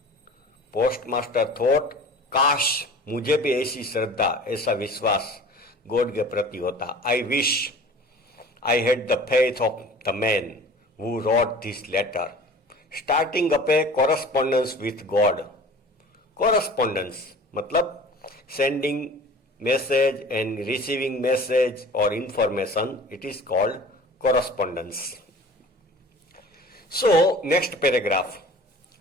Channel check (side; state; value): both; normal; correlation 0.43